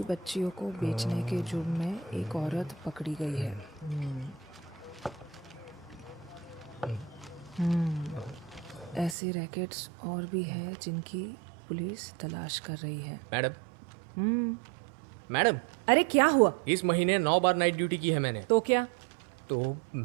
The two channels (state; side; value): drops out; left; at 9.2 s